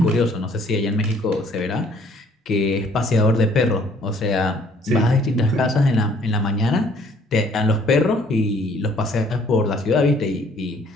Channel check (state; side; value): normal; both; correlation 0.60